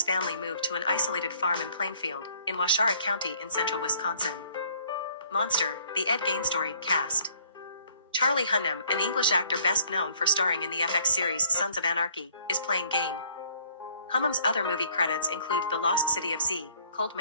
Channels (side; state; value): both; inverted; correlation -0.60